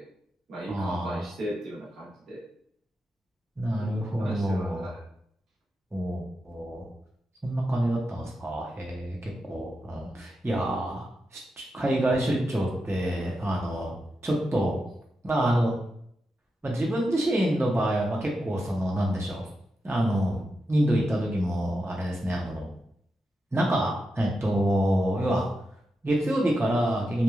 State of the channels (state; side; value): normal; both; correlation 0.88